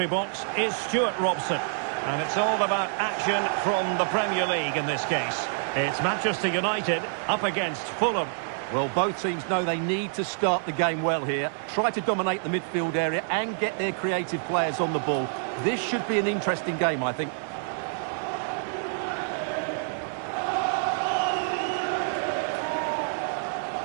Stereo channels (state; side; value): silent; left; digital silence